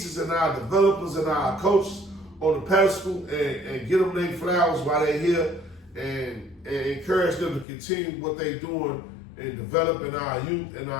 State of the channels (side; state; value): right; drops out; at 7.7 s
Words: and our developers and our coaches on the pedestal and get them their flowers while they're here and encourage them to continue what they're doing in developing our youth and